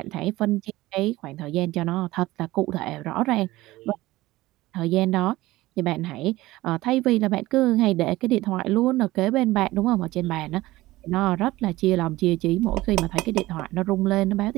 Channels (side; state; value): left; quieter; 18.0 dB